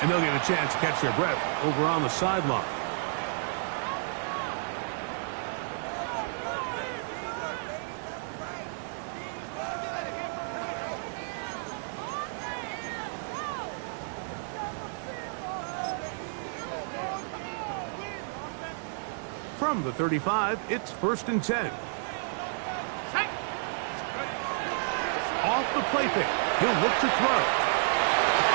and they'll get a chance to catch their breath over on the sideline. From the 35, it's 1st and 10. Off the play fake. He'll look to throw.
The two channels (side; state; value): left; silent; 57 dB below the other